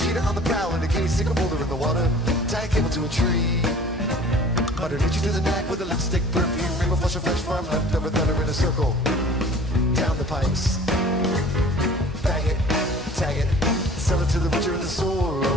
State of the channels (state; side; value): normal; both; correlation 0.47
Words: on the prowl in a case. Stick a boulder in the water. Tie a cable to a tree. Muttered hit you to the nag with a lipstick perfume. Reba flush a fresh farm leftover thunder in a circle. Down the pipes. Bag it, tag it. Sell it to the butcher in the store.